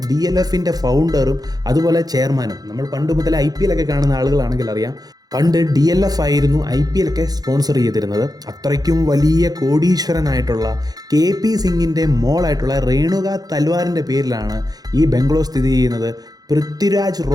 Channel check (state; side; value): late; left; 0.19 ms